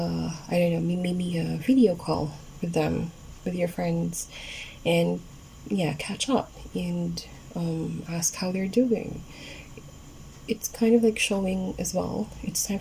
don't know, maybe a video call with them, with your friends, and yeah, catch up and ask how they're doing. It's kind of like showing as well. It's time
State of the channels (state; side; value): identical; both; correlation 1.00